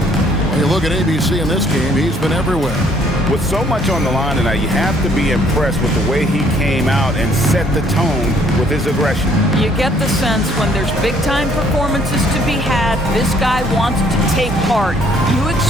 you look at ABC in this game, he's been everywhere. With so much on the line tonight, you have to be impressed with the way he came out and set the tone with his aggression. You get the sense when there's big-time performances to be had, this guy wants to take part. You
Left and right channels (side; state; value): both; normal; correlation 0.63